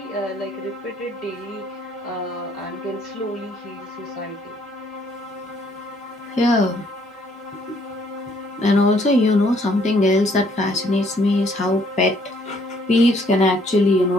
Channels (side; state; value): both; normal; correlation 0.65